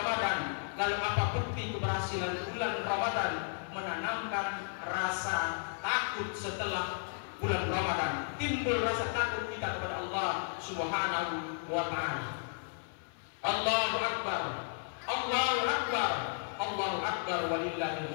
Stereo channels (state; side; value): silent; right; 55 dB below the other